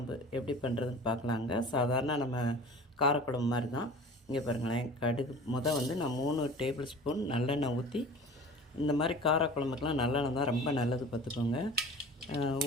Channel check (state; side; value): normal; both; correlation 0.41